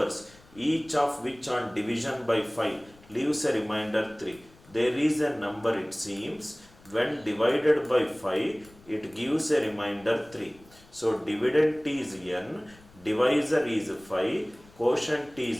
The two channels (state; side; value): noise; left; rumble, 25 dB below the sound